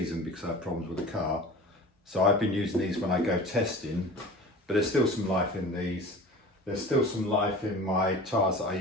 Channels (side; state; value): both; normal; correlation 0.38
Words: because I had problems with the car. So I've been using these when I go testing, but there's still some life in these. There's still some life in my tyres that I